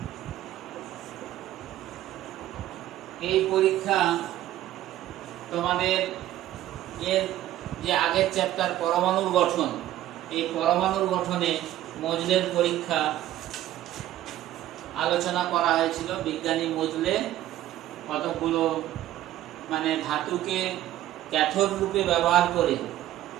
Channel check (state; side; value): quieter; left; 13.7 dB